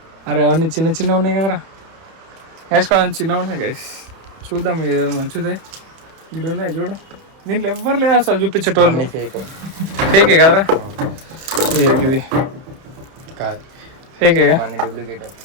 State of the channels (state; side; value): late; left; 31 ms